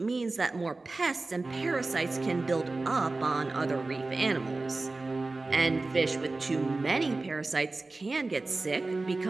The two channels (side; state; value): left; quieter; 3.4 dB